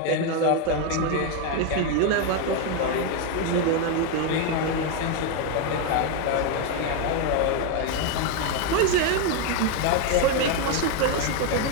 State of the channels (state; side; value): different; both; correlation 0.02